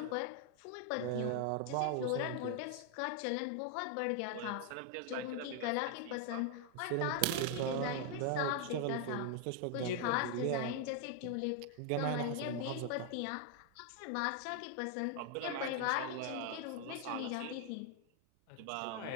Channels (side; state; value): both; different; correlation 0.00